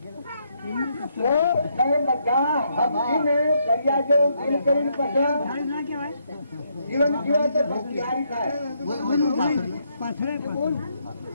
તો કઈ બધા હકીને દરિયા જો દિલ કરીને પછી જીવન જીવા તો ભક્તિયારી થાય.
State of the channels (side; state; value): both; inverted; correlation -0.75